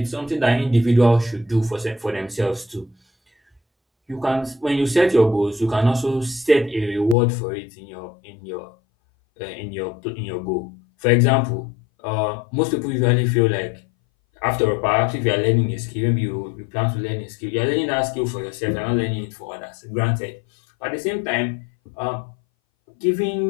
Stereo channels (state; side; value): drops out; right; at 7.2 s